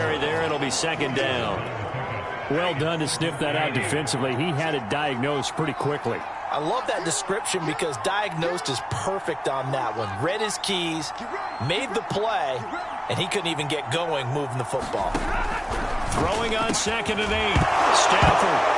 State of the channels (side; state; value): both; identical; correlation 1.00